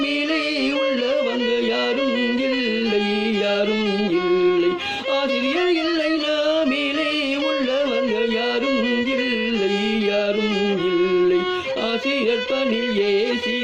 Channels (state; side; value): identical; both; correlation 1.00